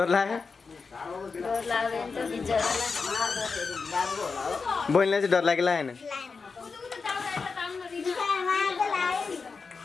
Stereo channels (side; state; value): right; quieter; 4.8 dB